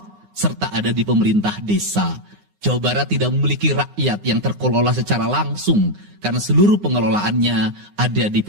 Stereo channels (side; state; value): left; late; 9.7 ms